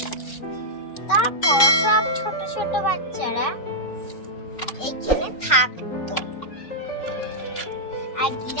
তারপর সব ছোট ছোট বাচ্চারা এইখানে থাকতো। আর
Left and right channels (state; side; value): late; right; 3.9 ms